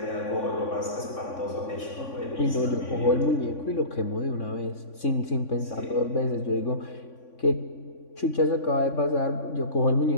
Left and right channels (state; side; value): late; right; 3.6 ms